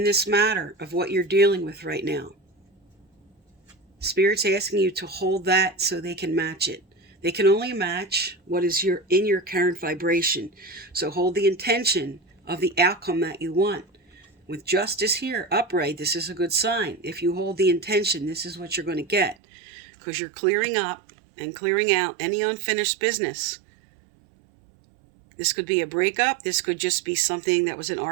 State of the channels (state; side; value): drops out; left; at 19.4 s